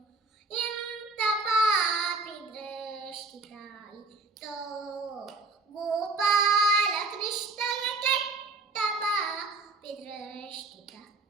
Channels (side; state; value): left; quieter; 3.5 dB